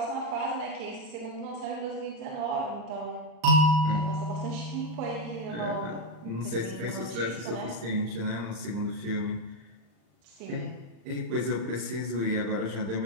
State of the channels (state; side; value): late; left; 37 ms